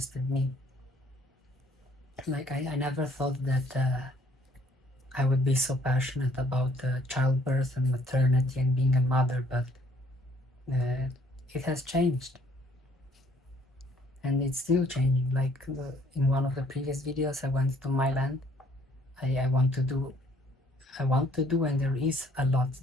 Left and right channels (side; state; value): both; normal; correlation 0.62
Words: me. Like I never thought that I would be so passionate about childbirth and maternity and being a mother, but it has changed, and it's still changing. Like in one of the previous videos, I went to my land. I want to do, and there is a lot